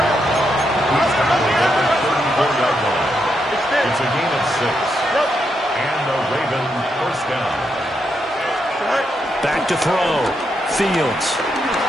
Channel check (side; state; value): both; normal; correlation 0.81